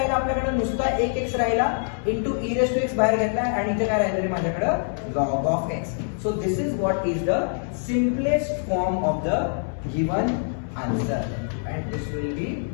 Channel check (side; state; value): right; silent; 62 dB below the other